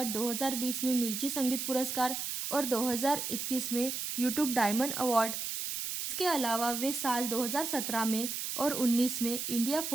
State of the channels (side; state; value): right; noise; hiss, 3 dB below the sound